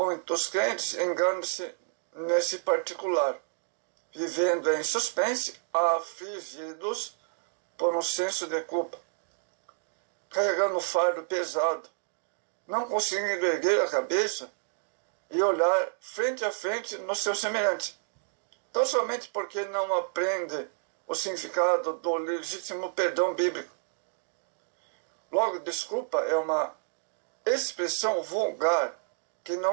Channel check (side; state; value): left; silent; digital silence